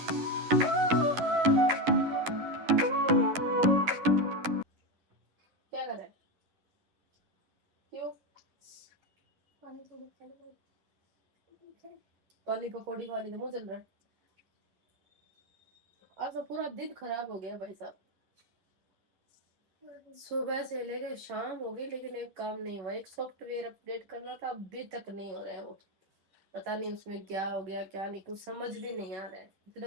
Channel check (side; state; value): left; late; 11 ms